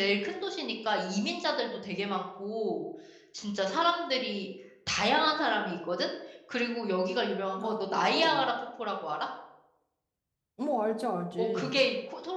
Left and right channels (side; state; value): both; identical; correlation 1.00